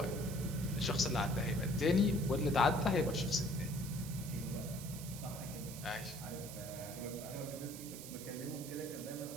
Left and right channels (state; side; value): noise; right; hiss, 11 dB below the sound